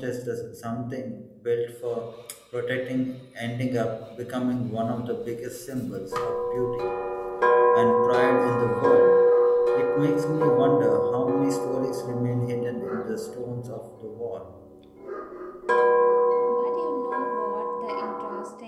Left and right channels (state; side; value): identical; both; correlation 1.00